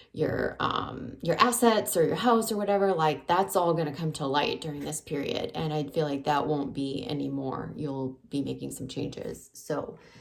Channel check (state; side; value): identical; both; correlation 1.00